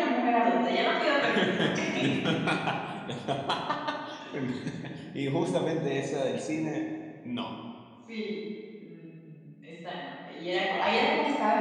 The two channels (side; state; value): both; identical; correlation 1.00